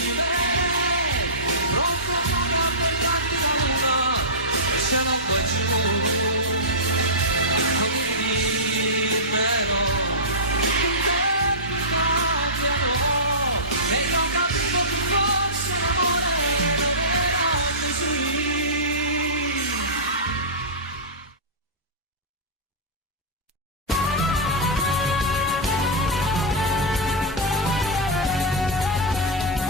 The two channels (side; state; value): both; normal; correlation -0.18